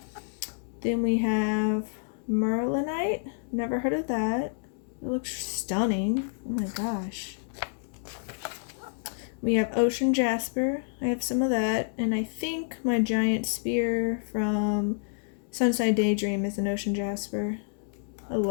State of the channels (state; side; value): silent; right; digital silence